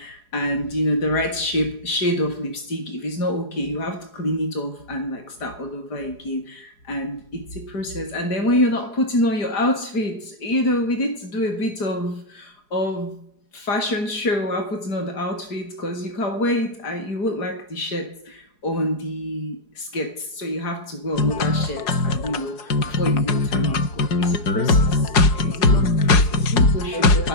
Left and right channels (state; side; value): late; right; 4.8 ms